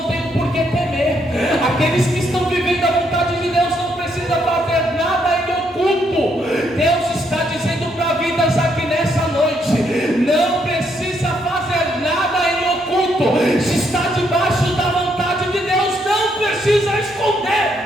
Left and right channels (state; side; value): normal; both; correlation 0.74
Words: têm por que temer. Aqueles que estão vivendo a vontade de Deus não precisam fazer nada em oculto. Deus está dizendo para vidas aqui nessa noite: não precisa fazer nada em oculto. Se está debaixo da vontade de Deus, não precisa esconder.